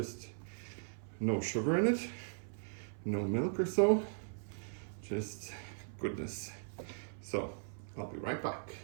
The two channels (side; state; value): left; silent; 52 dB below the other